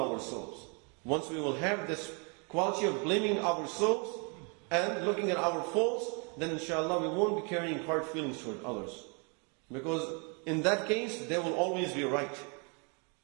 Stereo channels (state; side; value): quieter; left; 35.2 dB